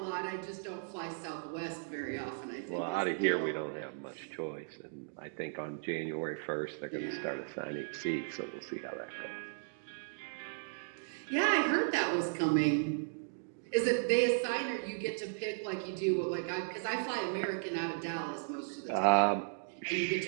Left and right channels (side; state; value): left; silent; digital silence